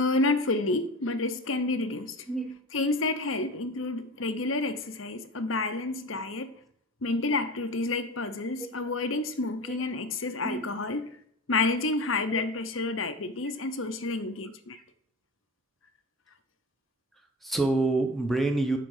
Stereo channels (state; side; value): normal; both; correlation 0.32